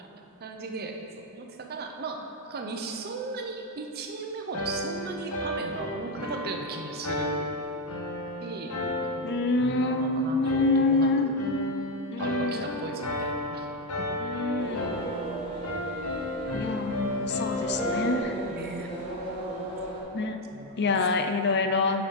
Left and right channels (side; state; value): both; normal; correlation 0.07